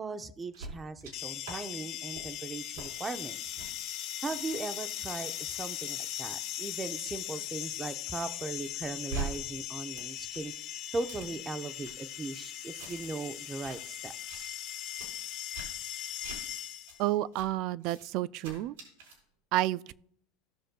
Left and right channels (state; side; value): normal; both; correlation 0.39